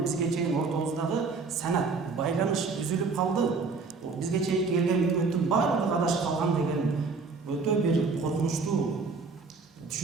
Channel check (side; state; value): left; quieter; 4.4 dB